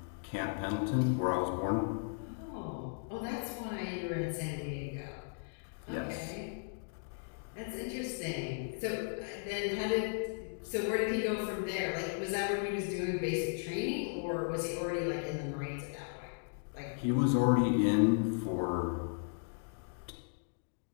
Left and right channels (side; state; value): right; silent; digital silence